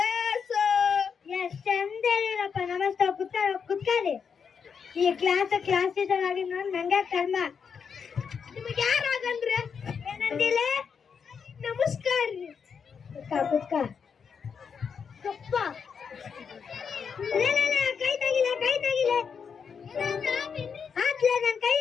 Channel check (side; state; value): right; quieter; 6.4 dB